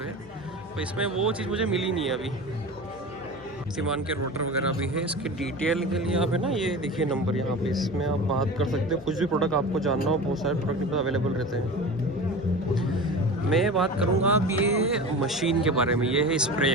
है। तो इसमें वो चीज़ मुझे मिली नहीं है अभी। शक्तिमान के रोटर वगैरह भी है। इसके डिटेल के लिए आप है ना, ये देखिए नंबर यहाँ पे, इसमें आप बात कर सकते हो, कुछ भी प्रोडक्ट आपको जानना हो, बहुत सारे प्रोडक्ट अवेलेबल रहते हैं। मैं बात करूँगा कि ये मशीन के बारे में, ये है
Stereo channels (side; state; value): left; noise; hum, 22 dB below the sound